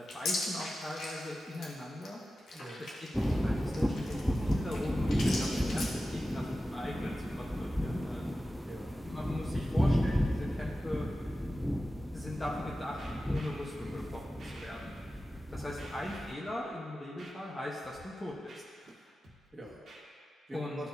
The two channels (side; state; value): both; normal; correlation 0.94